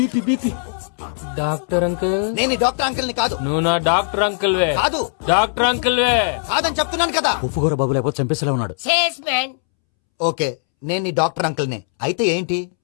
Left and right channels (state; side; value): silent; right; 66 dB below the other